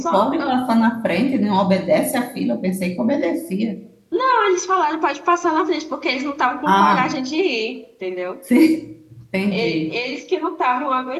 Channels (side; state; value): both; identical; correlation 1.00